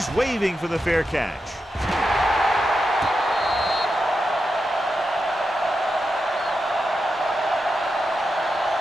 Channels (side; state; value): both; normal; correlation 0.88